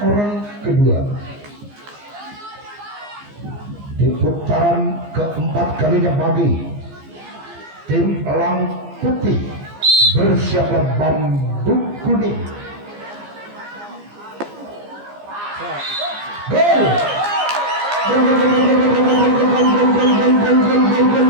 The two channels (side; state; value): left; late; 15 ms